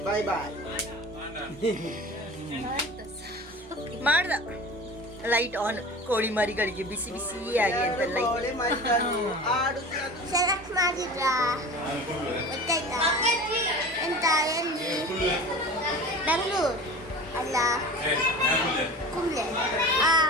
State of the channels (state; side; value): normal; both; correlation 0.36